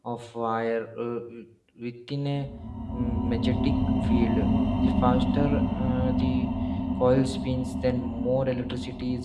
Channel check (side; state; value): both; identical; correlation 1.00